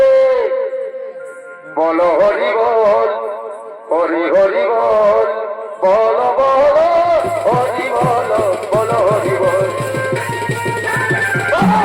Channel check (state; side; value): identical; both; correlation 1.00